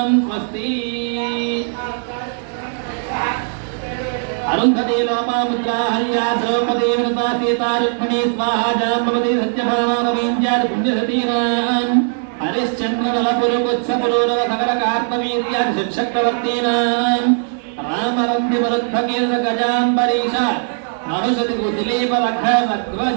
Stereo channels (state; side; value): silent; left; digital silence